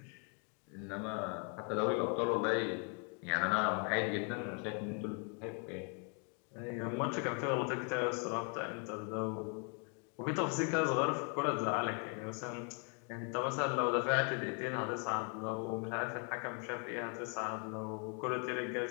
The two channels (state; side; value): quieter; right; 36.9 dB